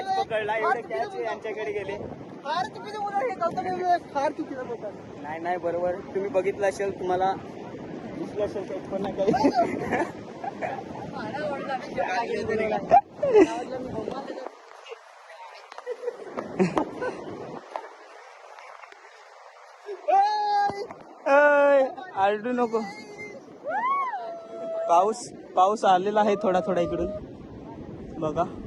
पकडला. एवढे कॅच यांच्याकडे गेले. नाही बरोबर, तुम्ही बघितलं असेल, तुम्हाला दिसलं असेल. एक पण नाही काही. आरडू नको. पाऊस आलेला आहे थोडा इकडून बघा.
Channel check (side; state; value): both; identical; correlation 1.00